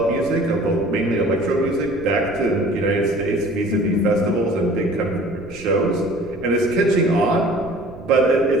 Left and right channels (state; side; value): noise; right; rumble, 18 dB below the sound